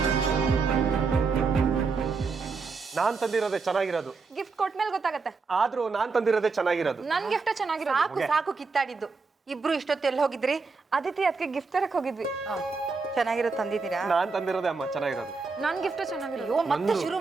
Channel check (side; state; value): left; quieter; 4.5 dB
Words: ನಾನ್ ತಂದಿರೋದೇ ಚೆನ್ನಾಗಿರೋದು. ಗಿಫ್ಟ್ ಕೊಟ್ಮೇಲೆ ಗೊತ್ತಾಗತ್ತೆ. ಆದ್ರೂ ನಾನ್ ತಂದಿರೋದೇ ಚೆನ್ನಾಗಿರೋದು. ನನ್ ಗಿಫ್ಟ್ ಚೆನ್ನಾಗಿರೋದು. ಸಾಕು ಸಾಕು ಕಿತ್ತಾಡಿದ್ದು. ಇಬ್ರು ಇಷ್ಟೊತ್ತು ಎಲ್ಲಿ ಹೋಗಿದ್ರಿ? ಅದಿತಿ ಅದಕ್ಕೆ ಗಿಫ್ಟ್ ತರಕ್ ಹೋಗಿದ್ವಿ. ಚೆನ್ನಾಗಿರೋ ತಂದಿದ್ದೀರಾ? ನಾನ್ ತಂದಿರೋದೇ ಅಮ್ಮ ಚೆನ್ನಾಗಿರೋದು. ನನ್ ಗಿಫ್ಟ್ ಚೆನ್ನಾಗಿರೋದು. ಅಯ್ಯೋ, ಮತ್ತೆ ಶುರು